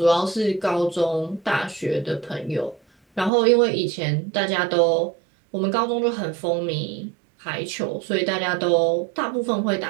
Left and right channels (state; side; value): drops out; left; at 3.3 s